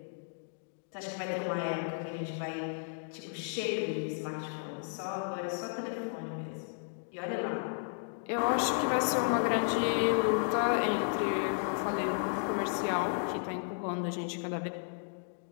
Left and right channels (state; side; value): silent; right; digital silence